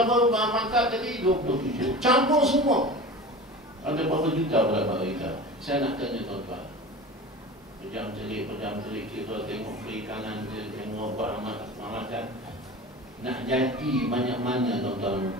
mangkap tadi? 27. Campur semua. Ada berapa juta berapa kita? Saya nak tanya tuan-tuan. Pejam-celik kita tengok perikanan, tengok peramatan. Nak jadi banyak mana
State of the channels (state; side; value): normal; both; correlation 0.34